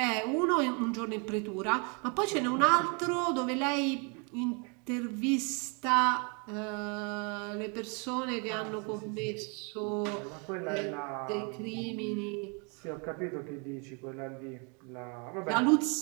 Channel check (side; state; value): left; quieter; 34.8 dB